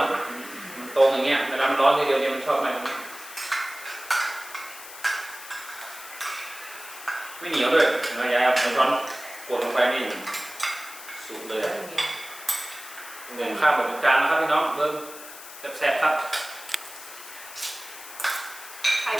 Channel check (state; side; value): noise; left; hiss, 14 dB below the sound